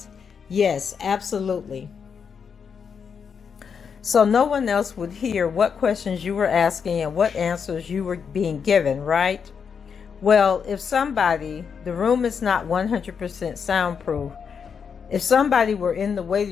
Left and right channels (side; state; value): right; quieter; 6.5 dB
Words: Yes, absolutely. So no one else would hear what questions you were asking and what answers you were being given, right? Well, if somebody, the room is not 100% soundproof. If somebody were in the